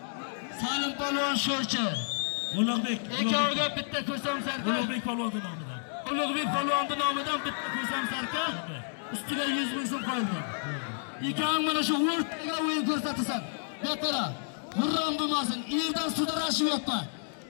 Salim Palvon Sho'rchi, Ulug'bek. Ikkoviga bitta ko'sam sarka. Ulug'bek Palvonning nomidan. Ulug'bek Palvonning nomidan bitta ko'sam sarka. Ustiga 100 ming so'm qo'yilgan. Ikkovi mana shu o'rtaga o'yin ko'rsatasan. Beqara, g'urram bo'lmasin. Yerdan sudrashib yotma.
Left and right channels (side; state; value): right; silent; digital silence